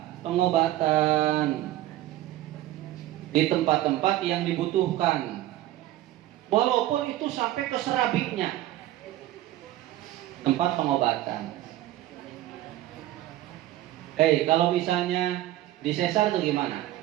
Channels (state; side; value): quieter; left; 14.8 dB